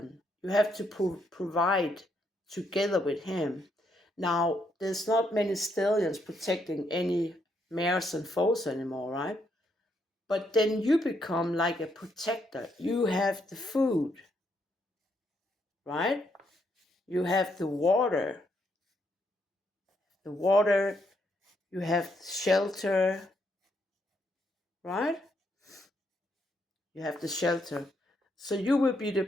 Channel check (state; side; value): normal; both; correlation 0.76